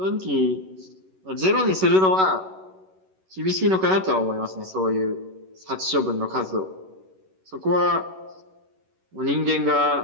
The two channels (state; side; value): late; left; 11 ms